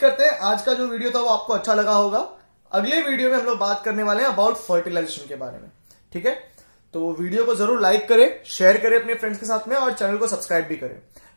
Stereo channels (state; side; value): inverted; both; correlation -1.00